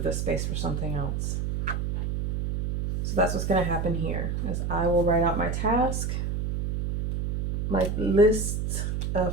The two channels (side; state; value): right; noise; hum, 1 dB below the sound